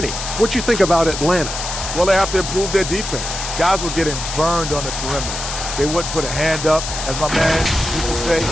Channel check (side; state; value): left; noise; hiss, 6 dB below the sound